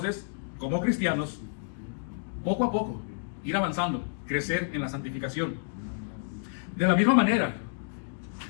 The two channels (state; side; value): silent; right; digital silence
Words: como cristianos, poco a poco, ir avanzando, crecer en la santificación. De la misma manera,